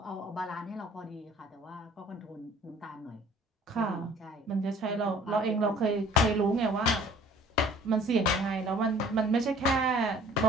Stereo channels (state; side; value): normal; both; correlation 0.52